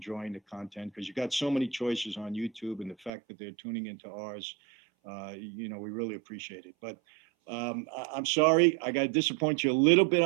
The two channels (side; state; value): left; drops out; at 3.1 s